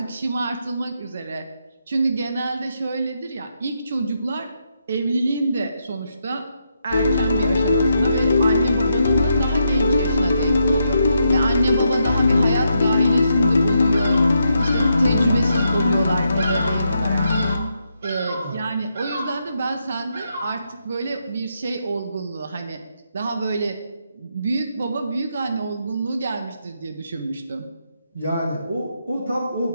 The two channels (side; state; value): both; inverted; correlation -0.81